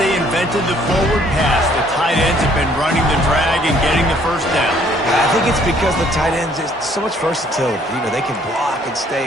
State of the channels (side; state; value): both; normal; correlation 0.62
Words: invented the forward pass, the tight ends have been running the drag and getting the first down. I think it's because the tight ends is so much versatility. You know, they can block and